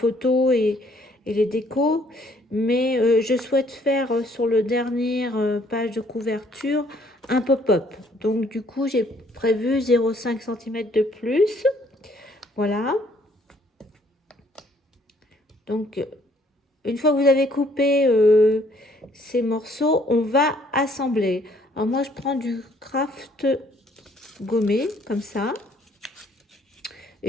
et les décos. Mais je souhaite faire sur le dernier page de couverture un pop-up. Donc, du coup, j'ai prévu 0,5 cm de plus. Voilà. Donc, une fois que vous avez coupé ces morceaux, on va assembler. Alors moi, je prends du craft gommé, comme ça.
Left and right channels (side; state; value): both; normal; correlation 0.63